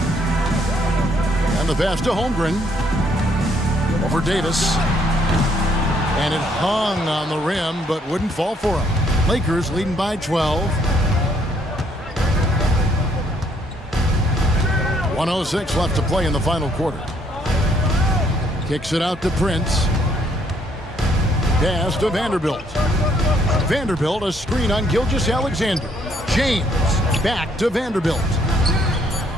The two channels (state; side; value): normal; both; correlation 0.68